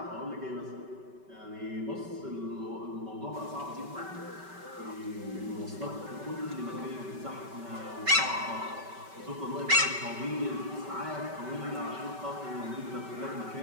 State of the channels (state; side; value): late; left; 5.2 ms